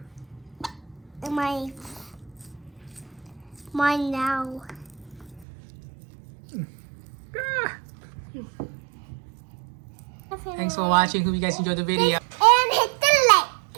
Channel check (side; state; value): left; drops out; at 5.5 s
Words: Mine now. Ah. Thanks for watching. Hope you guys enjoyed the video.